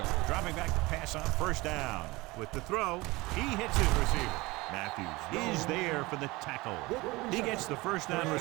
Dropping back to pass on first down. With the throw, he hits his receiver. Matthews is there for the tackle. He gets the first down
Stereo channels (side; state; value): left; quieter; 21.9 dB